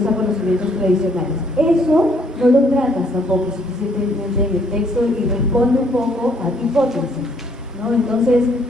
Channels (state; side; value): normal; both; correlation 0.67